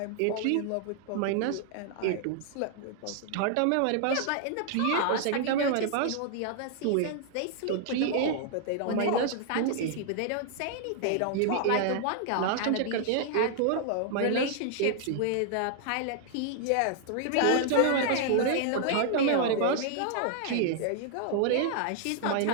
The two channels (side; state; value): both; different; correlation 0.00